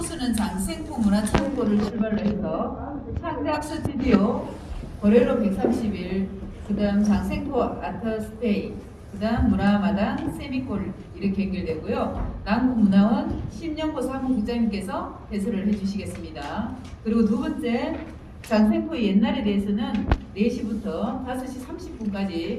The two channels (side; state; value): both; identical; correlation 1.00